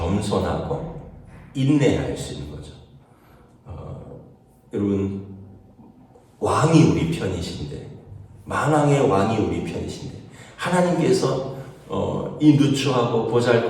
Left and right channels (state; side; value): identical; both; correlation 1.00